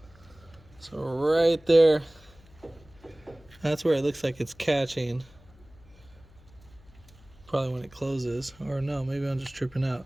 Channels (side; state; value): left; noise; hum, 25 dB below the sound